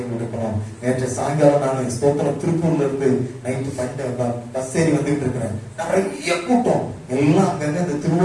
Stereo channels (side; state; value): both; identical; correlation 1.00